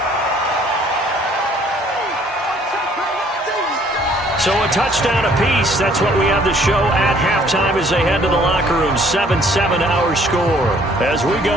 So a touchdown apiece. That's what we have to show at halftime as they head to the locker room. 7-7 our score. As we go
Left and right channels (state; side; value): normal; both; correlation 0.60